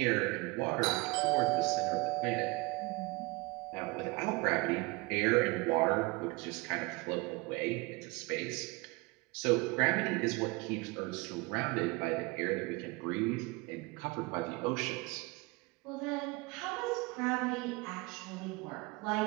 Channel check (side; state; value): left; quieter; 25.5 dB